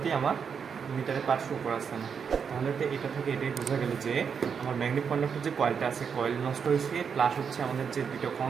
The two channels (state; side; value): quieter; left; 6.6 dB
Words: আমার মিটারে পার্ট শো করা আসছে না। তাহলে তো এটা থেকে এটাই বোঝা গেল যে আমার ম্যাগনেটিক কন্ডাক্টর যে কয়েলটা আছে, কয়েল নষ্ট হয়েছে, প্লাস হচ্ছে আমাদের যে দুটো